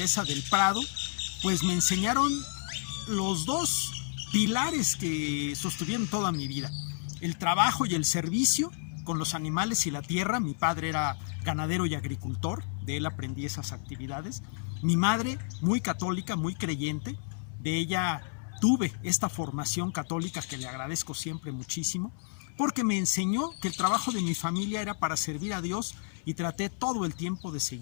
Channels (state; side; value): silent; right; 57 dB below the other